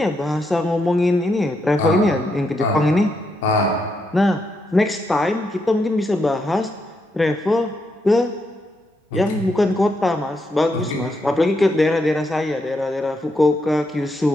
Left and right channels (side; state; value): both; normal; correlation 0.81